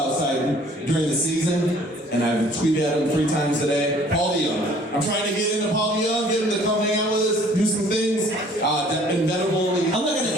Side during the season, and I've tweeted at him 3 times a day. Paul DeYoung. I'm trying to get into Paul DeYoung, get him to come hang out with us, do some things. Inevitable. I'm not going to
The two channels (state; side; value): normal; both; correlation 0.55